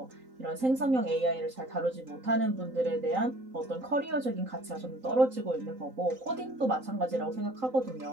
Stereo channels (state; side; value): late; left; 3.9 ms